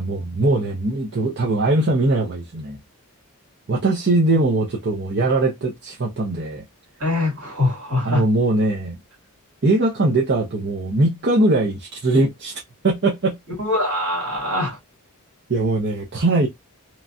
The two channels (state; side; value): normal; both; correlation 0.45